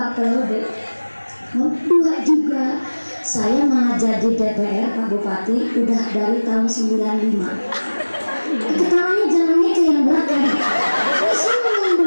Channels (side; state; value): both; inverted; correlation -1.00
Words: periode? 2 juga. Saya malah jadi DPR Pak Bupati udah dari tahun 95. Ketawanya jalannya ke yang belakang.